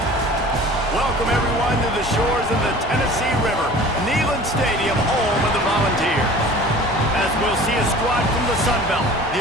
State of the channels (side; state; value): both; normal; correlation 0.43